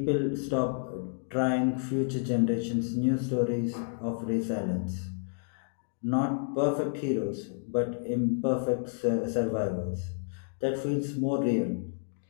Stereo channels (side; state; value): right; silent; digital silence